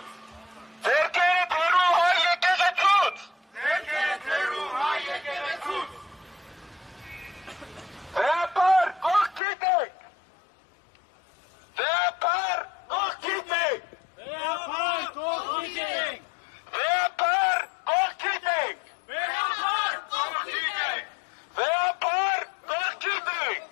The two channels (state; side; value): drops out; right; at 9.4 s